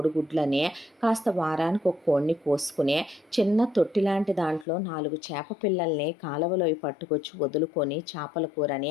కాస్త వారానికి ఒక కోడిని కోసుకుని చిన్న తొట్టి లాంటి దాంట్లో 4 చేప పిల్లల్ని కాలువలో పట్టుకొచ్చి వదులుకొని చేపల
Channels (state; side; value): drops out; right; at 4.7 s